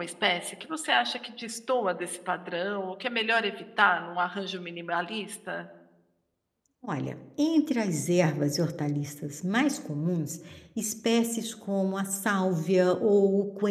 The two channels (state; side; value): identical; both; correlation 1.00